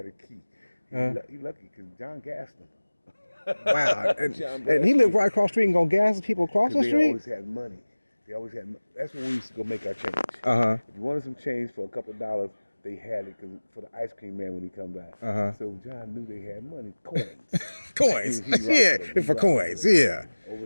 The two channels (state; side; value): inverted; both; correlation -1.00